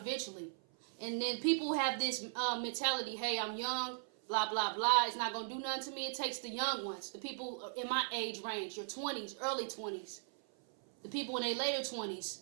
And then people have this mentality, hey, I'm young, blah, blah, blah. It's not going to do nothing to me. It takes the young ones, the people in my age range, your 20s, early 20s. The people in their later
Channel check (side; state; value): left; silent; 52 dB below the other